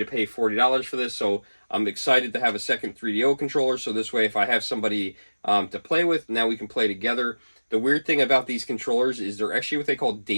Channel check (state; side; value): inverted; both; correlation -1.00